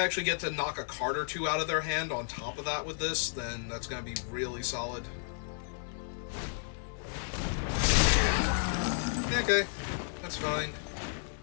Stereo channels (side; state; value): right; silent; 56 dB below the other